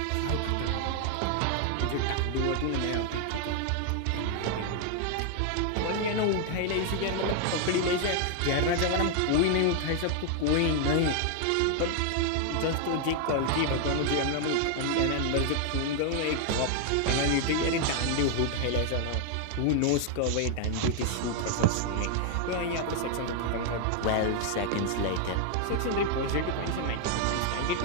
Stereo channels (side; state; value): both; different; correlation 0.00